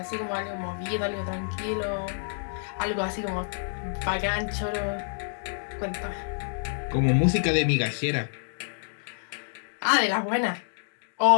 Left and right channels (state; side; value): silent; right; digital silence